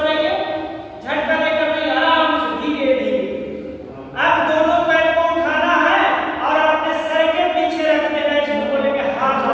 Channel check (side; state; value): both; identical; correlation 1.00